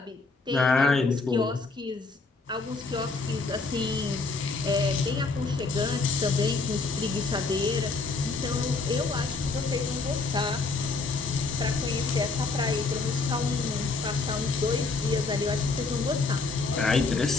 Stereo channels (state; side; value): quieter; right; 4.0 dB